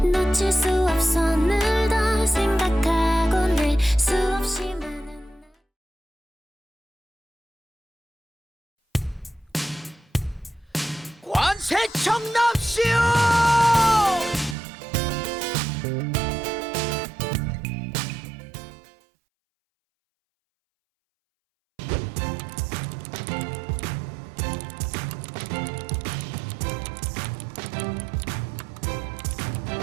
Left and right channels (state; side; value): drops out; left; at 14.6 s